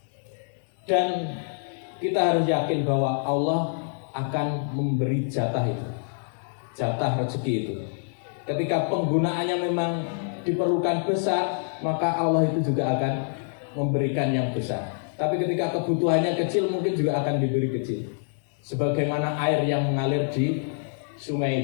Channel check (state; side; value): silent; right; digital silence